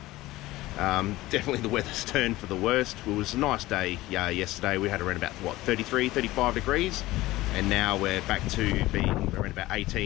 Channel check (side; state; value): right; quieter; 17.9 dB